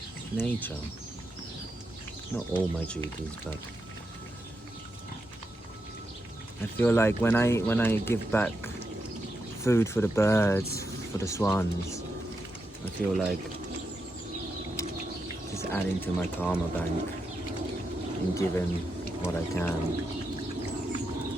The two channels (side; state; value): both; normal; correlation 0.85